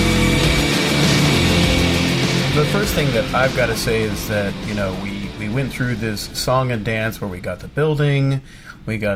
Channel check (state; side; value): identical; both; correlation 1.00